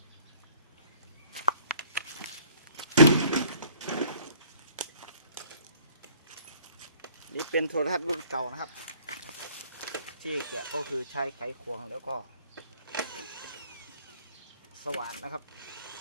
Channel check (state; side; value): inverted; both; correlation -0.56